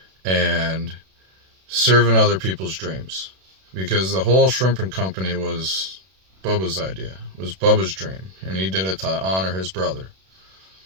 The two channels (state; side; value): late; left; 32 ms